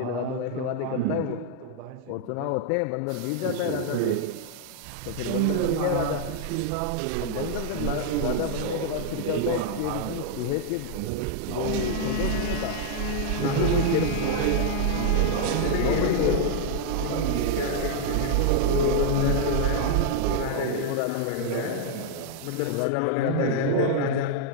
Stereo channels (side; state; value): both; different; correlation -0.01